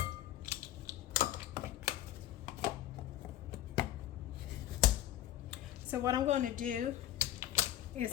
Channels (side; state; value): right; quieter; 13.0 dB